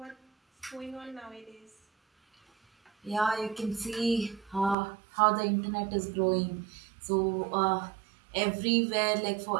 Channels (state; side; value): drops out; left; at 4.8 s